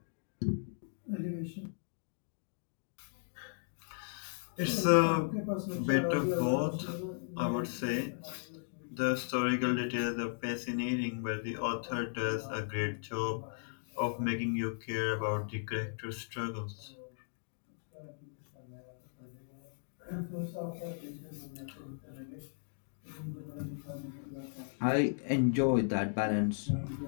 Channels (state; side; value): silent; right; digital silence